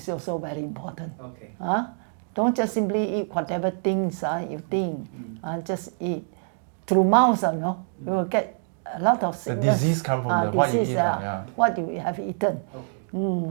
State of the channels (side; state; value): left; silent; digital silence